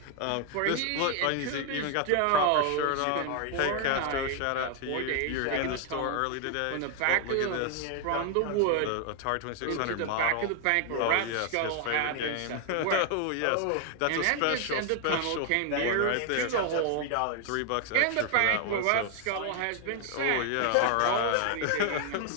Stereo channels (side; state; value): both; different; correlation 0.00